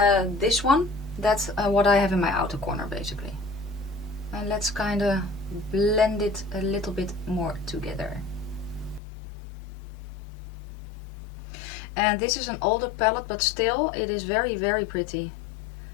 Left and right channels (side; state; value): right; drops out; at 9.0 s